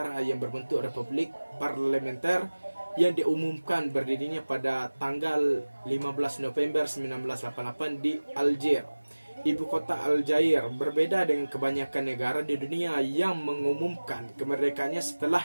yang berbentuk republik parlementer yang diumumkan berdirinya pada tanggal 15 November 1988 di Algier, ibu kota Aljair. Berbeda dengan kebanyakan negara di dunia yang mengumumkan kemerdekaannya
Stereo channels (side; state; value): both; inverted; correlation -1.00